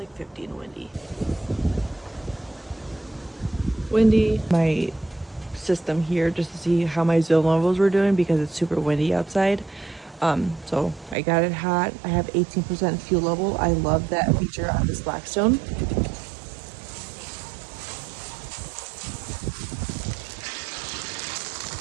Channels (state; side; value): drops out; left; at 11.2 s